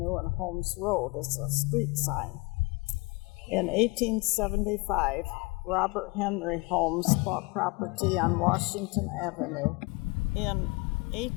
and Holmes Road is a street sign. In 1875, Robert Henry Holmes bought property on Washington Avenue. In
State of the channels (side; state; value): right; quieter; 26.8 dB